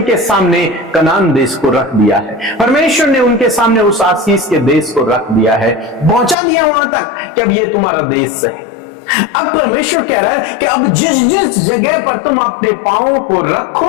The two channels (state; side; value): drops out; right; at 6.4 s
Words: सामने कनान देश को रख दिया है, परमेश्वर ने उनके सामने उस आशीष के देश को रख दिया है, पहुंचा दिया वहां तक कि अब ये तुम्हारा देश है। अब परमेश्वर कह रहा है कि अब जिस जिस जगह पर तुम अपने पांवों को